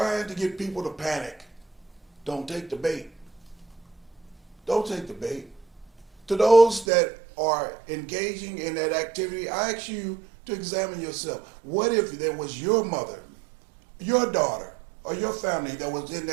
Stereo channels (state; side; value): drops out; left; at 6.9 s